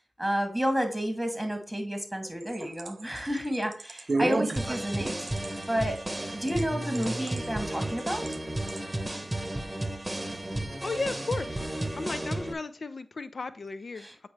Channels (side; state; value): both; normal; correlation 0.96